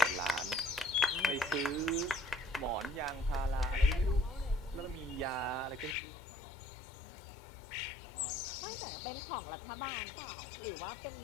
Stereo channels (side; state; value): right; drops out; at 6.0 s